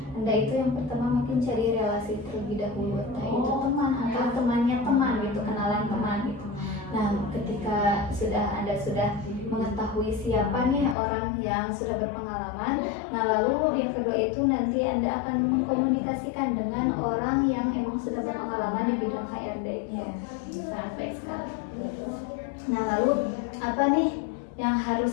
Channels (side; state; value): right; drops out; at 11.0 s